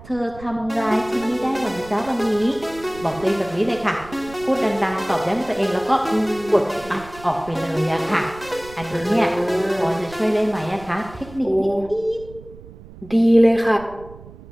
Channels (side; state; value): right; noise; rumble, 18 dB below the sound